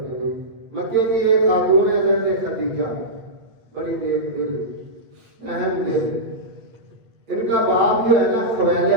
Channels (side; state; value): left; late; 8.5 ms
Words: مکے کی ایک خاتون ہے حضرت خدیجہ، بڑی نیک دل، اہم دل۔ ان کا باپ جو ہے نا